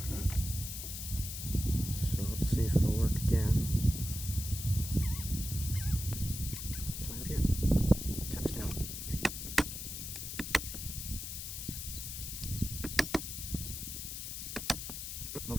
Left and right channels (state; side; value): noise; left; hiss, 6 dB below the sound